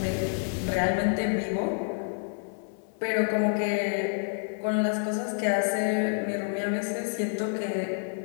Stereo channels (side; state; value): right; silent; 59 dB below the other